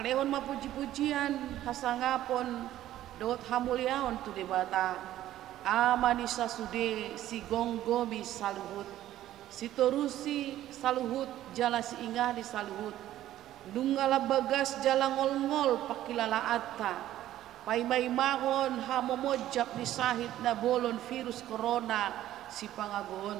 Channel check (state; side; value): quieter; left; 13.3 dB